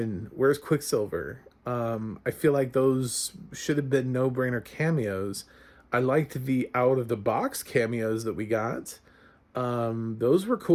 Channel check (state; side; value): identical; both; correlation 1.00